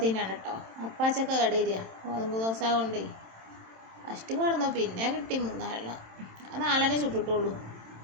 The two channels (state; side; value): late; left; 27 ms